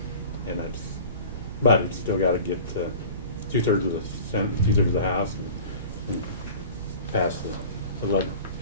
And but it's still gotta get 2/3 of the Senate, 2/3 of the House, and pass the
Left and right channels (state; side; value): inverted; both; correlation -0.40